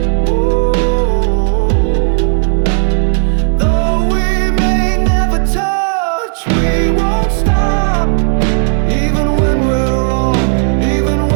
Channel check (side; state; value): left; silent; digital silence